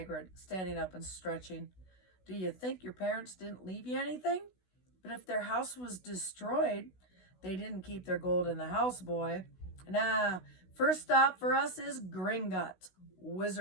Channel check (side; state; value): right; late; 16 ms